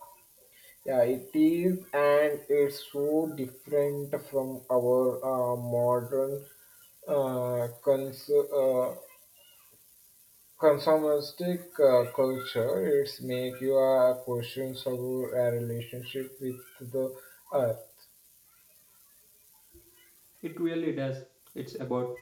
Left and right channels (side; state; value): both; identical; correlation 1.00